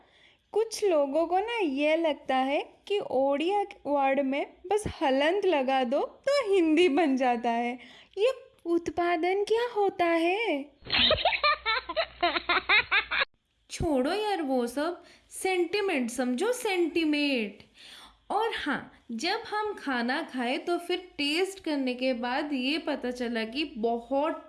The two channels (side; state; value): both; identical; correlation 1.00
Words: कुछ लोगों को ना ये लगता है कि ओडिया वर्ड में बस हलंत लगा दो तो हिंदी बन जाता है। ये उत्पादन क्या होता है? छोड़ो यार वो सब, सेंटिमेंट समझो, सेंटिमेंट। और हाँ, जब हम खाना खाए तो फिर टेस्ट करने के बाद ये पता चला कि बहुत